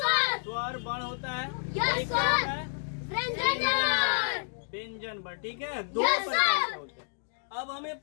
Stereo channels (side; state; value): right; silent; digital silence